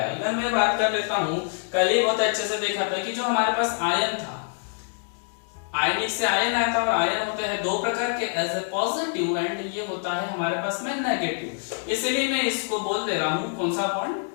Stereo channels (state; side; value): silent; right; 61 dB below the other